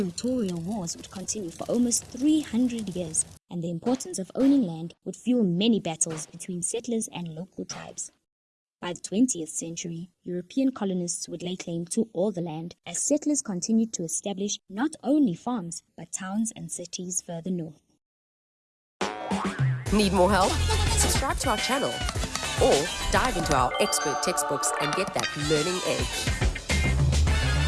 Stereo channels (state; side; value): identical; both; correlation 1.00